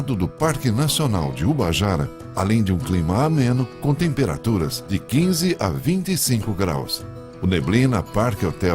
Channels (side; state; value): both; identical; correlation 1.00